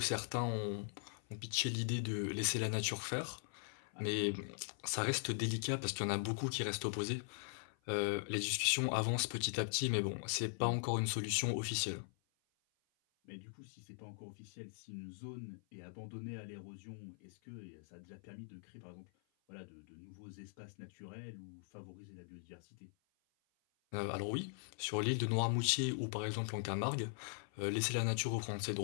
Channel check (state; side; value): silent; right; 51 dB below the other